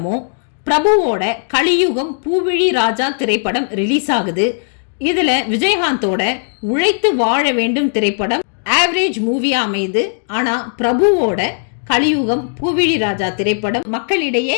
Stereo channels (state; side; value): silent; right; digital silence